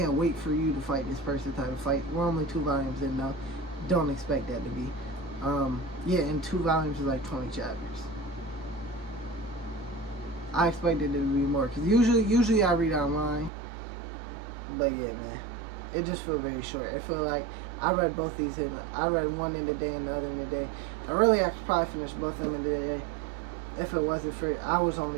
wait for you to fight this person type of fight. We're only 2 volumes in, though. Don't expect that to be. Yeah, and 2 volumes is like 20 chapters. I expected it to be more, because usually I read online. But yeah, man, it just feels very short. It feels like I read both these I read one in the day and the other in the day. And really, I could probably finish both of them in the day if it wasn't for I was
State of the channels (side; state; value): left; drops out; at 13.5 s